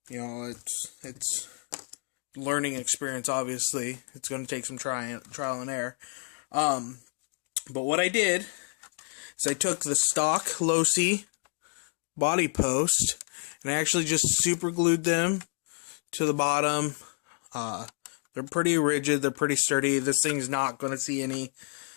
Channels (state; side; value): quieter; right; 38.7 dB